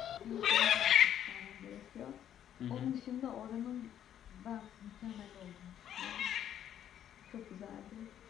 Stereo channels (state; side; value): quieter; right; 10.3 dB